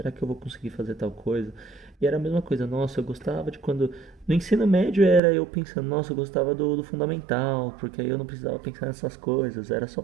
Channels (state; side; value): drops out; left; at 5.2 s